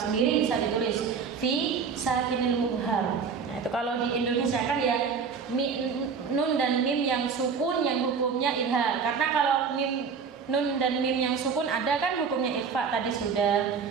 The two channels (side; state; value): left; quieter; 5.9 dB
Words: bisa ditulis fi sakinil mubhar. Nah, itu kalau di Indonesia kan ya nun dan mim yang sukun yang hukumnya idhar. Karena kalau nun dan mim yang sukun ada kan hukumnya ikhfa tadi sudah,